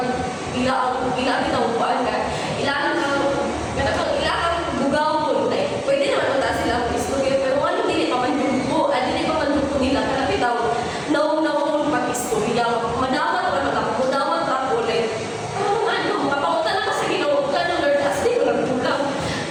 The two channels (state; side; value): identical; both; correlation 1.00